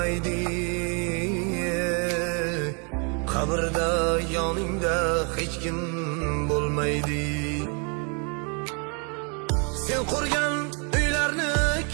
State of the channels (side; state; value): left; quieter; 36.6 dB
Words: Qabrda yoningda hech kim bo'lmaydi. Sen qurgan uylarni